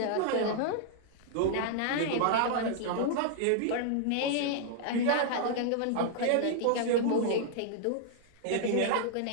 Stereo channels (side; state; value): both; different; correlation -0.01